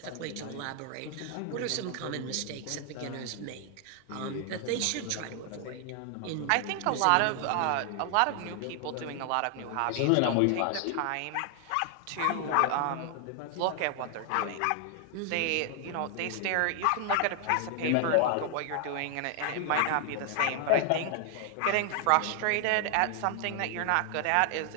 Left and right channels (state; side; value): different; both; correlation 0.00